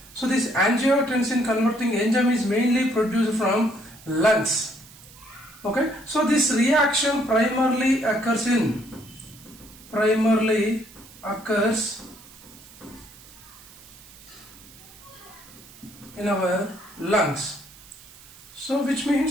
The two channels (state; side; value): noise; right; hiss, 21 dB below the sound